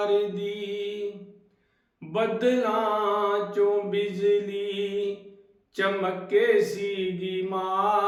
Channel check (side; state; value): both; identical; correlation 1.00